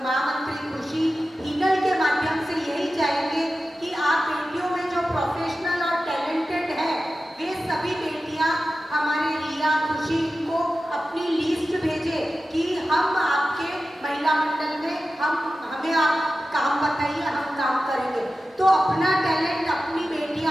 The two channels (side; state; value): both; normal; correlation 0.94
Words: महामंत्री खुशी हिनल के माध्यम से यही चाहेंगे कि आप बेटियों में जो प्रोफेशनल और टैलेंटेड है, वे सभी बेटियां हमारे रिया खुशी को अपनी लिस्ट भेजे कि हम आपके महिला मंडल में हमें आप काम बताइए, हम काम करेंगे। तो अपना टैलेंट अपनी